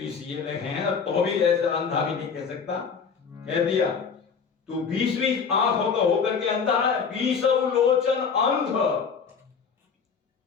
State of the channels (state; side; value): quieter; right; 6.0 dB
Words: ये लिखे हैं तो भी ऐसा अंधा भी नहीं कह सकता, कह दिया तू 20 आंख होकर के अंधा है, 20 लोचन अंध।